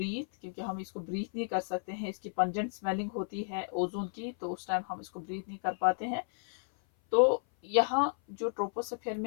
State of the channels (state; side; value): silent; right; 56 dB below the other